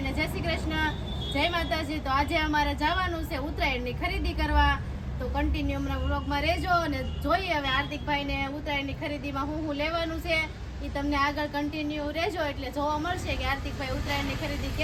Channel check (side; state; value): both; identical; correlation 1.00